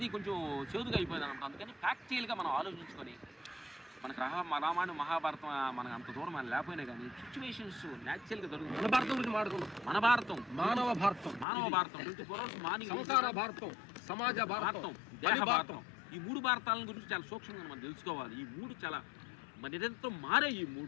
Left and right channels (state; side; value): drops out; right; at 11.5 s